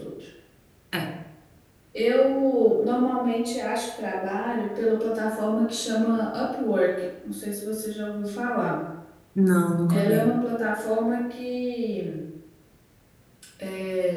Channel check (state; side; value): identical; both; correlation 1.00